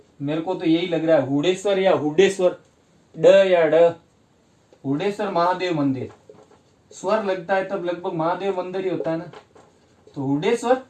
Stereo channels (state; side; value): identical; both; correlation 1.00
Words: मेरे को तो यही लग रहा है हुडेश्वर या हुडेश्वर, ड या ड, हुडेश्वर महादेव मंदिर, स्वर लगता है तब लगभग महादेव मंदिर ही होता है ना। तो हुडेश्वर